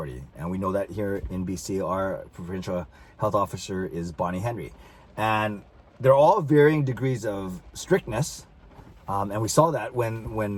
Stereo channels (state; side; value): identical; both; correlation 1.00